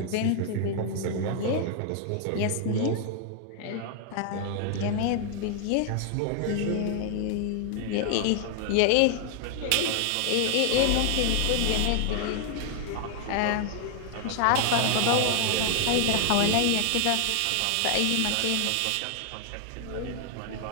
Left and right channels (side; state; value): both; different; correlation 0.00